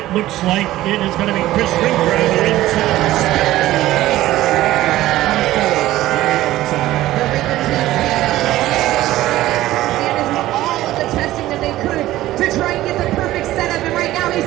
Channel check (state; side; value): quieter; left; 15.4 dB